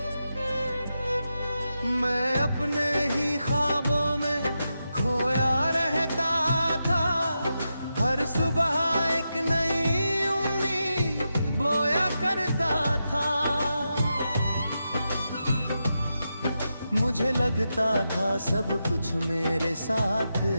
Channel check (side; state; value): both; inverted; correlation -0.88